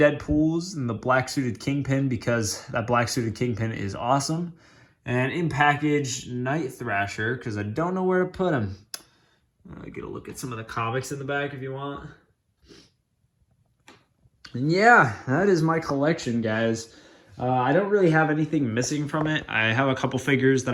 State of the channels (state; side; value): identical; both; correlation 1.00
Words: and the black-suited Kingpin, because that black-suited Kingpin is awesome. And in package, Night Thrasher, because I don't know where to put him. Get a look at some of the comics in the back if you want. And yeah, that is my collection, guys. I don't really have anything missing from it. I have a couple figures that